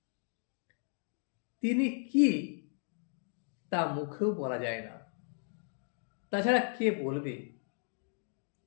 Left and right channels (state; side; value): silent; right; 54 dB below the other